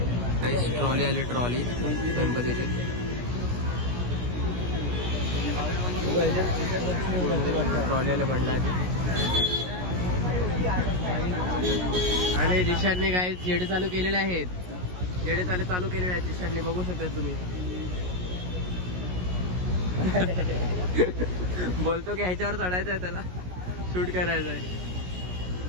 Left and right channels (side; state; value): left; late; 17 ms